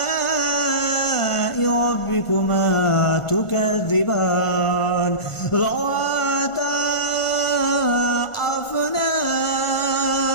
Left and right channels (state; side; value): late; right; 1.4 ms